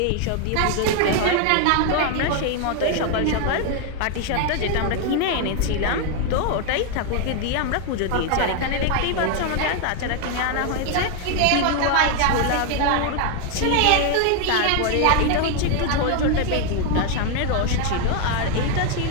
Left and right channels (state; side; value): different; both; correlation 0.01